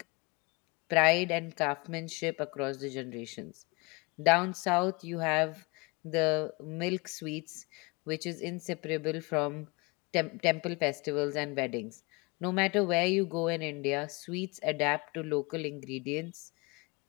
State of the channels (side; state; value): right; quieter; 27.2 dB